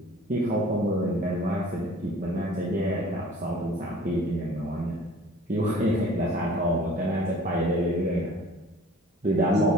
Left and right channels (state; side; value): normal; both; correlation 0.48